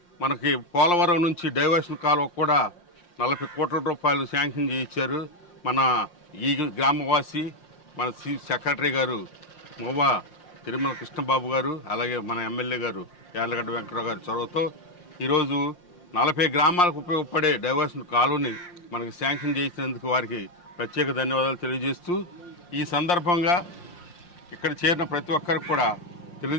మనకి పోలవరం నుంచి డైవర్షన్ కాలువ కూడా 40 కోట్ల రూపాయలు శాంక్షన్ చేయించారు. మన ఈ గ్రామవాసి మన సెక్రటరీ గారు మోవా తిరుమల కృష్ణబాబు గారు, అలాగే మన ఎమ్మెల్యే గారు యార్లగడ్డ వెంకటరావు గారి చొరవతో ఈరోజు 40 గ్రామాలకు ఉపయోగపడే డైవర్షన్ కాలువని మనకి శాంక్షన్ చేసినందుకు వారికి ప్రత్యేక ధన్యవాదాలు తెలియజేస్తూ, ఈ సందర్భంగా ఇక్కడ చేరిన ప్రతి ఒక్కరికి కూడా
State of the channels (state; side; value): late; right; 5.7 ms